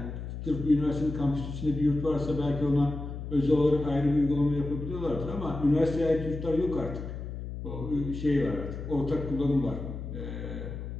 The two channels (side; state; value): left; noise; hum, 7 dB below the sound